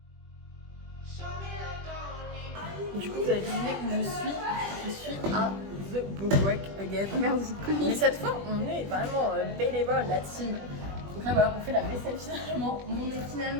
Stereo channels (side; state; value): left; late; 20 ms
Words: Du coup, vous avez deviné où je suis. Je suis à The Bookwork again. Merci. Mais cette fois, on est vraiment bénévole, la team. Donc là, voilà, on fait la vaisselle finalement.